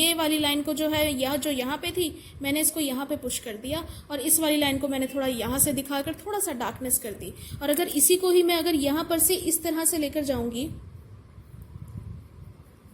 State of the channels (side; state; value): both; identical; correlation 1.00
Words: वाली लाइन को जो है यह जो यहाँ पे थी मैंने इसको यहाँ पे पुश कर दिया और इस वाली लाइन को मैंने थोड़ा यहाँ से दिखाकर थोड़ा सा डार्कनेस कर दी। और अगर इसी को ही मैं अगर यहाँ पर से इस तरह से लेकर जाऊंगी